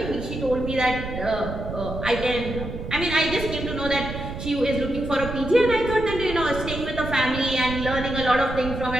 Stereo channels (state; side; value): noise; right; rumble, 7 dB below the sound